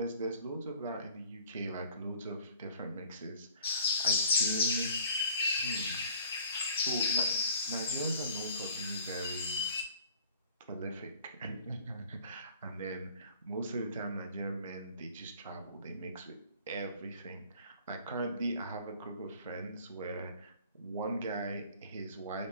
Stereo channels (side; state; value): both; inverted; correlation -0.52